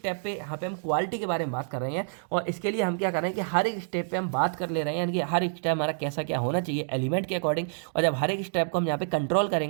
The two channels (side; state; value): left; silent; digital silence